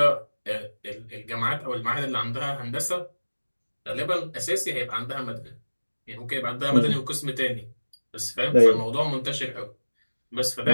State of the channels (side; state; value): both; inverted; correlation -1.00